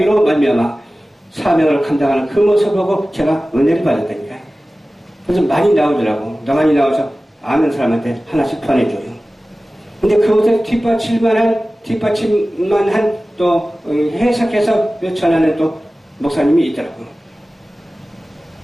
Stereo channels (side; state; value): both; normal; correlation 0.97